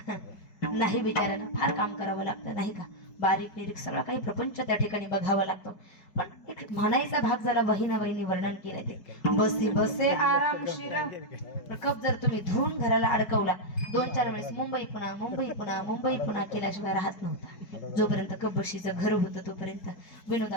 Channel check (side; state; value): right; late; 5.5 ms